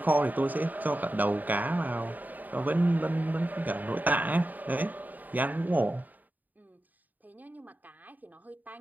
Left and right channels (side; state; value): left; late; 0.084 ms